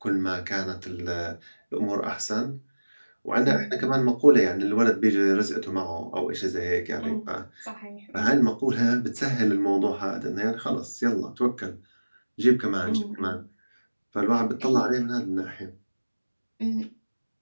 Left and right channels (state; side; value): inverted; both; correlation -1.00